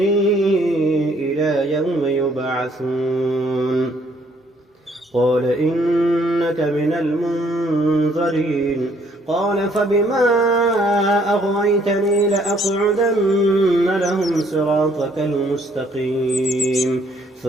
إلى يوم يبعثون. قال إنك من المنظرين. قال فبما أغويتني لأقعدن لهم صراطك المستقيم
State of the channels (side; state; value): both; normal; correlation 0.65